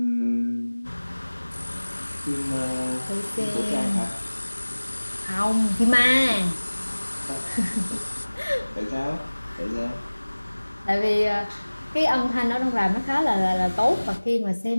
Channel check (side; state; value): both; inverted; correlation -1.00